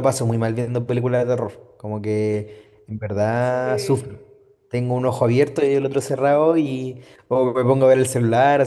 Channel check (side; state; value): both; identical; correlation 1.00